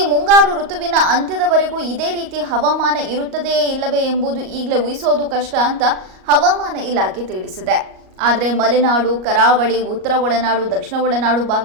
ಮುಂಗಾರು ಋತುವಿನ ಅಂತ್ಯದವರೆಗೂ ಇದೇ ರೀತಿ ಹವಾಮಾನ ಇರುತ್ತದೆಯೇ ಇಲ್ಲವೇ ಎಂಬುದು ಈಗಲೇ ಊಹಿಸೋದು ಕಷ್ಟ ಅಂತ ಹವಾಮಾನ ಇಲಾಖೆ ತಿಳಿಸಿದೆ. ಆದರೆ ಮಲೆನಾಡು, ಕರಾವಳಿ, ಉತ್ತರ ಒಳನಾಡು, ದಕ್ಷಿಣ ಒಳನಾಡು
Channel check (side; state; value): left; late; 38 ms